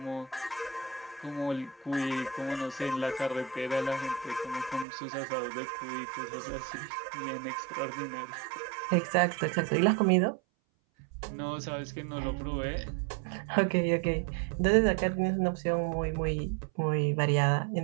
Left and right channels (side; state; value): left; drops out; at 4.9 s